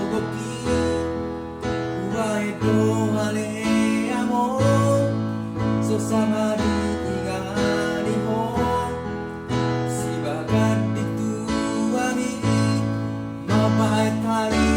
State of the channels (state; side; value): identical; both; correlation 1.00